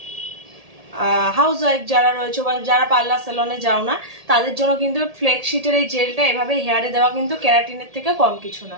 হাউস ওয়াইফ যারা রয়েছে বা যারা পার্লার সেলনে যাও না তাদের জন্য কিন্তু ফ্লেক্সিটের এই জেলটা এভাবে হেয়ারে দেওয়া কিন্তু ক্যারাটিনের থেকে কম কিছু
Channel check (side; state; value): left; late; 1.7 ms